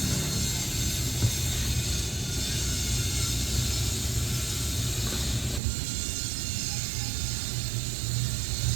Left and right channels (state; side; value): drops out; left; at 5.6 s